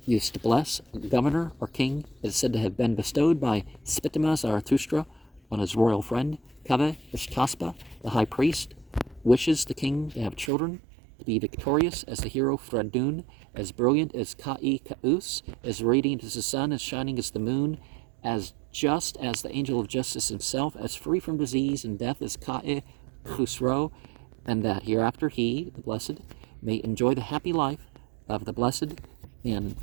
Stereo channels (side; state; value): left; drops out; at 10.5 s